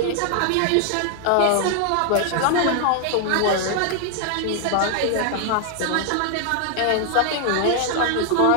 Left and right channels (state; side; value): different; both; correlation 0.00